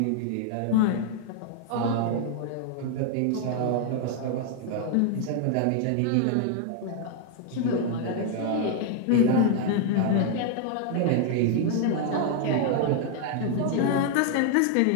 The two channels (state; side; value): different; both; correlation 0.00